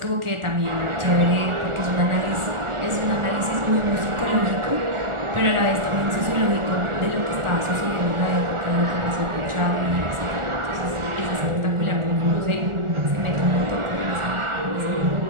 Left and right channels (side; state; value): left; late; 1.4 ms